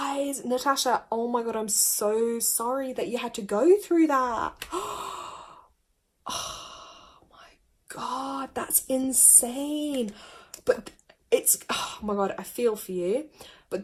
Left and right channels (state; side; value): identical; both; correlation 1.00